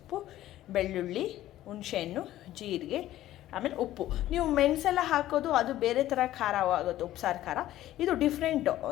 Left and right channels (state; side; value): quieter; right; 14.0 dB